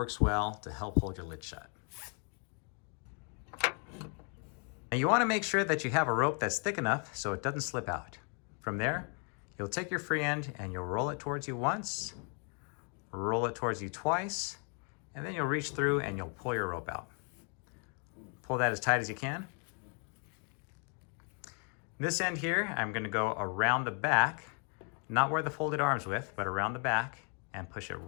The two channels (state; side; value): quieter; right; 39.7 dB